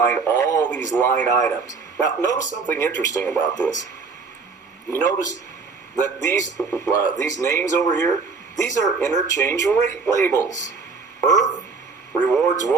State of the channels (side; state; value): left; quieter; 4.7 dB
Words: all these line items. Now, notice something interesting about this. You notice that these names over here, these are interchange rate labels. Earth, Rewards